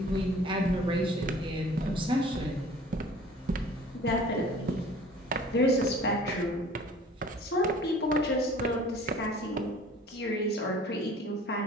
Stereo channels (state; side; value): normal; both; correlation 0.48